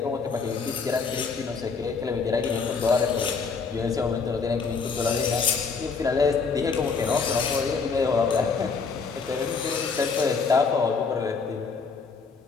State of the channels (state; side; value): quieter; right; 5.0 dB